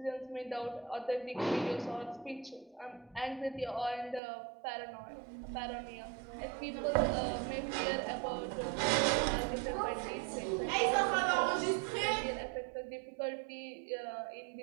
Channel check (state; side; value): drops out; left; at 4.2 s